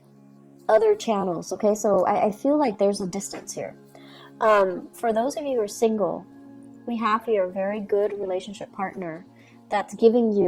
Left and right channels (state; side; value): identical; both; correlation 1.00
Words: other channels. Okay, so I feel like there's a distance here. For those of you who are single, we have here a very good relationship partner that's giving